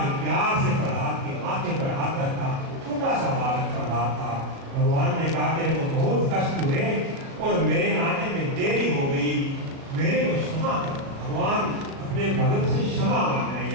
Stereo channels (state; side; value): late; left; 36 ms